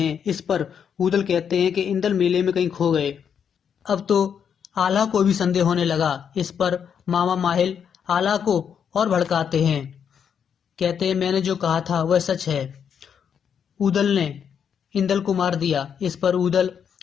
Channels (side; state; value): right; quieter; 7.7 dB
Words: इस पर उदल कहते हैं कि इंदल मेले में कहीं खो गए। अब तो आल्हा को भी संदेह होने लगा। इस पर मामा माहिल आल्हा को और भड़काते हैं। कहते हैं, मैंने जो कहा था वह सच है, उदल ने इंदल को मार दिया। इस पर उदल